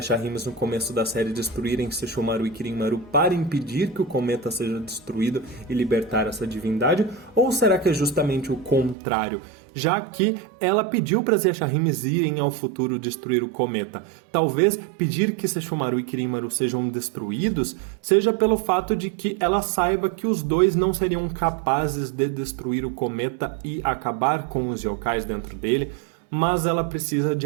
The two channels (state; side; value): drops out; left; at 9.0 s